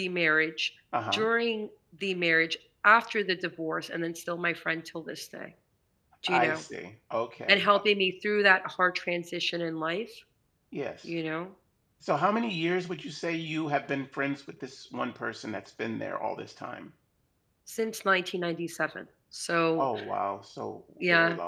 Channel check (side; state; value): both; identical; correlation 1.00